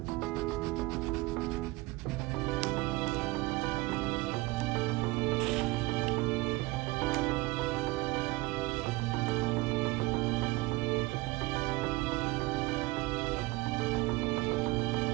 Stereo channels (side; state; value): left; quieter; 21.7 dB